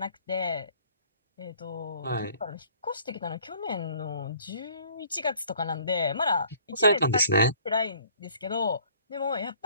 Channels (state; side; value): inverted; both; correlation -0.57